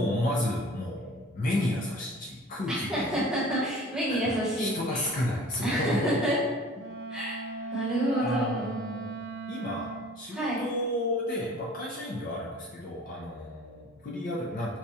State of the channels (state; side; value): normal; both; correlation 0.47